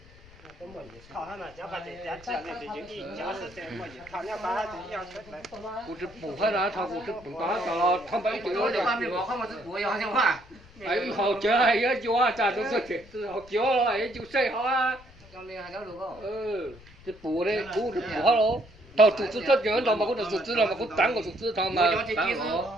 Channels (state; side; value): noise; left; rumble, 23 dB below the sound